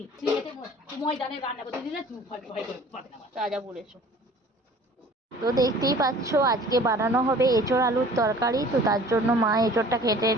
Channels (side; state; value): both; normal; correlation 0.48